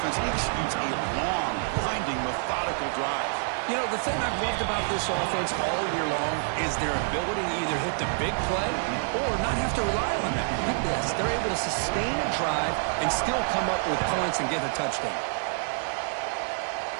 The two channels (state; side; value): silent; left; 60 dB below the other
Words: executes a long, grinding, methodical drive. You know, the thing I've loved about this offense all year long is their ability to either hit the big play or not have to rely on that. Look at this. They're able to sustain a drive and still come up with points and get a touchdown.